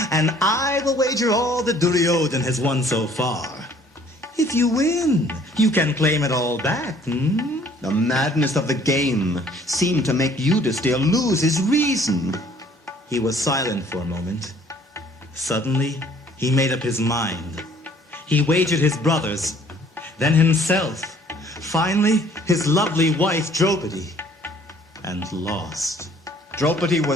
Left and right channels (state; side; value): normal; both; correlation 0.57